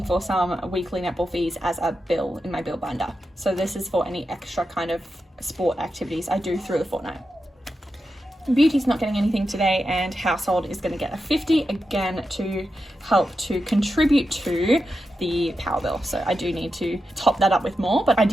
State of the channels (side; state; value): both; normal; correlation 0.89